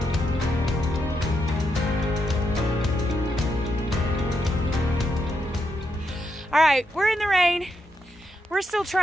All right, we're in the rain. We're still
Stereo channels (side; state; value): both; normal; correlation 0.82